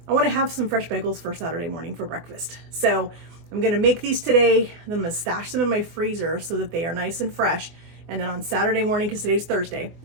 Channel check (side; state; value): left; late; 24 ms